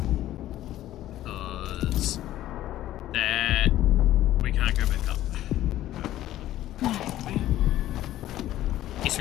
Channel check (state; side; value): quieter; right; 13.7 dB